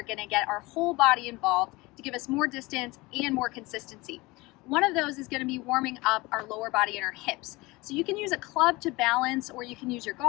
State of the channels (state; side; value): quieter; right; 22.6 dB